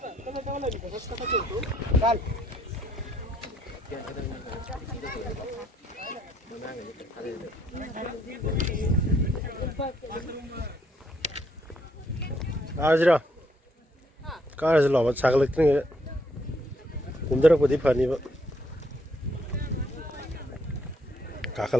Ajra, car is a lot of chocolate. Kumdara put the funny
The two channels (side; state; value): both; normal; correlation 0.70